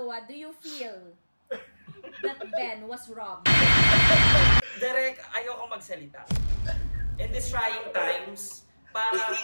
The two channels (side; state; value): both; inverted; correlation -1.00